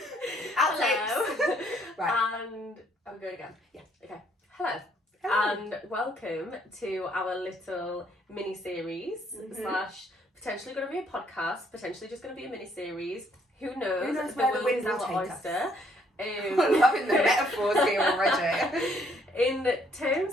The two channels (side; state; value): both; normal; correlation 0.67